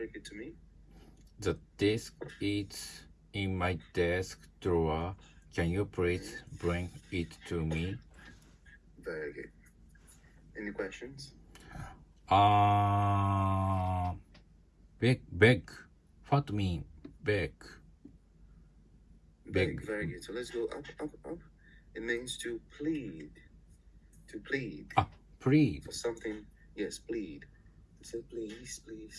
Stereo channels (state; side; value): identical; both; correlation 1.00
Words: it to me? The disc is in my desk drawer. Can you please bring it to me? Very good. Any questions? Beg. What mean beg? Beg. Very good. So let's go up. It means to plead. To plead. Plead. For something. Yes, plead. So please.